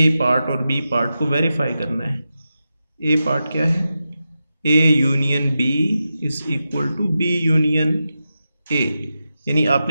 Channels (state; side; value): inverted; both; correlation -0.90